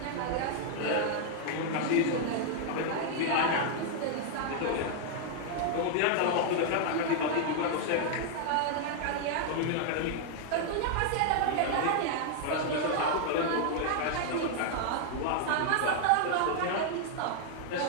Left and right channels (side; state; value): both; different; correlation 0.00